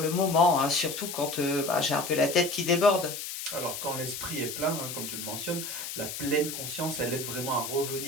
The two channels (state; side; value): noise; left; hiss, 7 dB below the sound